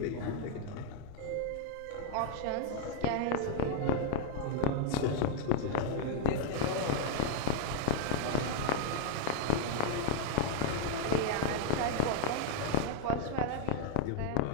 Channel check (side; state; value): both; different; correlation 0.00